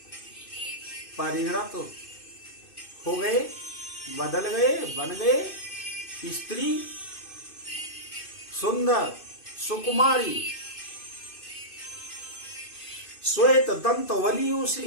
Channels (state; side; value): late; right; 2.6 ms